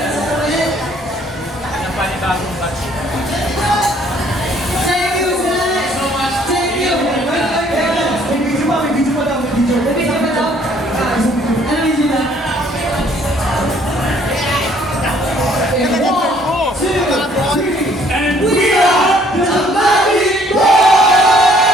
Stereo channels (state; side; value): normal; both; correlation 0.62